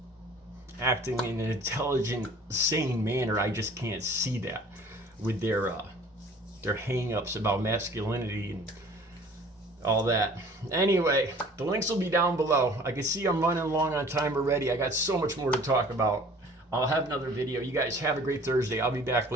acting in an intelligent, sane manner. I just can't see that with their hang-ups about masculinity and all that. Anyway, the links will be down below. I can see I'm running long on time already. I got so much more to talk about. I'll have another video. You guys have a great Thursday. I'll be back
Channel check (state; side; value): normal; both; correlation 0.50